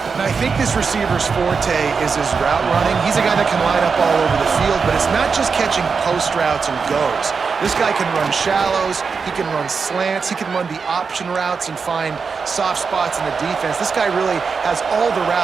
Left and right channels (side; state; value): left; quieter; 5.3 dB